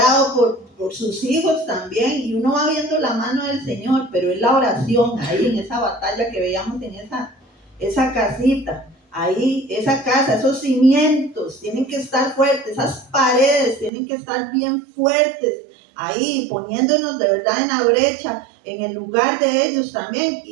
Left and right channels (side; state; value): left; drops out; at 13.9 s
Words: por sus hijos también, y uno va viendo la mano del Señor, pero es la oración ahí en esa batalla que veíamos en esa casita, ahí, esa casa, esos cimientos tienen que estar fuertes, esas paredes tienen que estar bien fuertes, ahí poniéndonos de verdad en la brecha, en el lugar de ellos también,